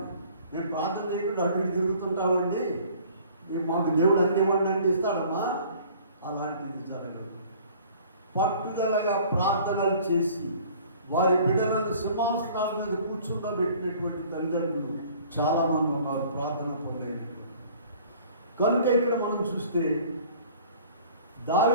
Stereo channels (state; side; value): inverted; both; correlation -0.51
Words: నేను ప్రార్థన చేయకుండా అటు ఇటు తిరుగుతుంటామండి, మాకు దేవుడు అన్ని ఇవ్వండి ఇస్తాడమ్మా. అలాంటిది జరగదు. పట్టుదలగా ప్రార్థనలు చేసి వారి బిడ్డలను సింహాసనాల మీద కూర్చుండబెట్టినటువంటి తల్లిదండ్రులు చాలామంది ఉన్నారు ప్రార్థన పొందేటటువంటి. కనుక ఇక్కడ మనం చూస్తే